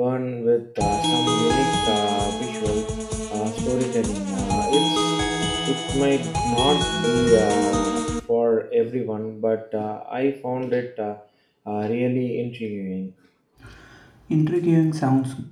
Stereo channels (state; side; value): identical; both; correlation 1.00